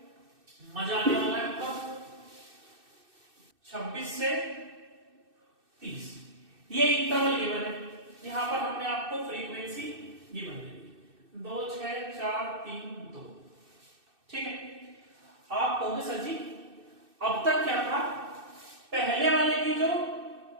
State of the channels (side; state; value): left; late; 2.6 ms